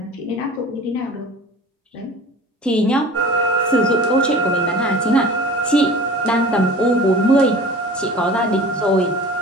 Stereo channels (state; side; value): normal; both; correlation 0.40